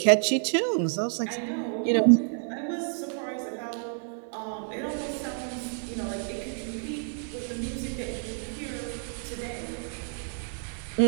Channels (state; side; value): silent; left; 59 dB below the other